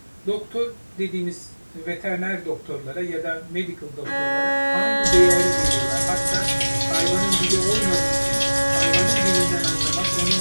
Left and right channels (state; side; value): inverted; both; correlation -1.00